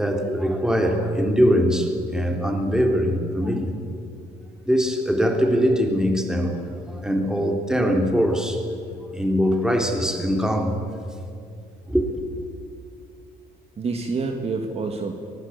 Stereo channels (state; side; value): normal; both; correlation 0.81